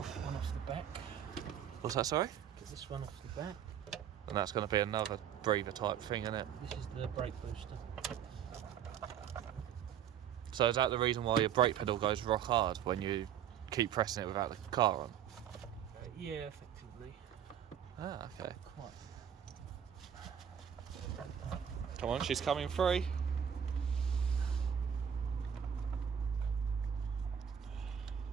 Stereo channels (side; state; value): left; quieter; 8.8 dB